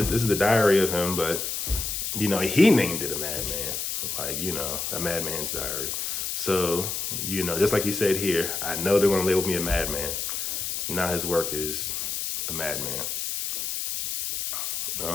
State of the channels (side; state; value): left; noise; hiss, 3 dB below the sound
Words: the diary of him, but, he named it a madman, like, a madman's diary. So, just like he said here, I know they're going to label me a madman. Now his work is a madman.